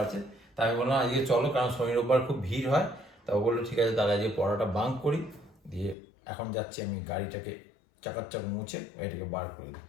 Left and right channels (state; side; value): drops out; right; at 6.0 s